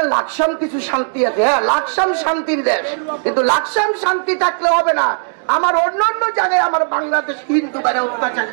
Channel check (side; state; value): left; silent; digital silence